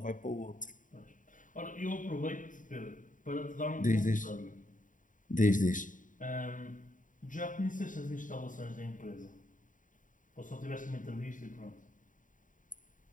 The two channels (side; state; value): right; late; 0.38 ms